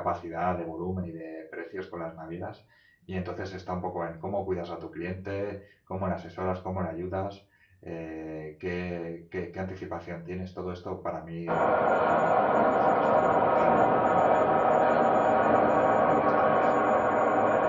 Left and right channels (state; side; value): identical; both; correlation 1.00